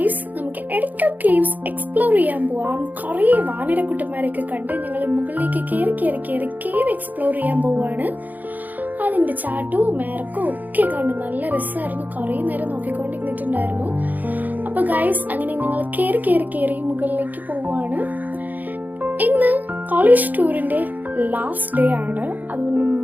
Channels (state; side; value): late; left; 0.083 ms